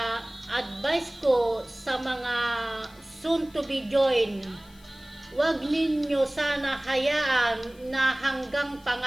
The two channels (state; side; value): noise; left; hiss, 27 dB below the sound